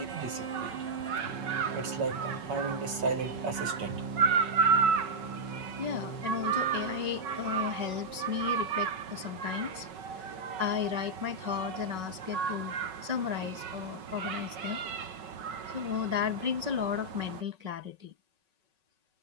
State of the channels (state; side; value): late; left; 5.4 ms